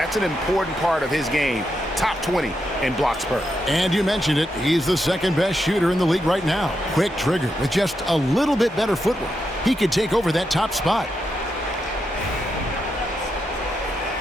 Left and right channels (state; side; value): normal; both; correlation 0.84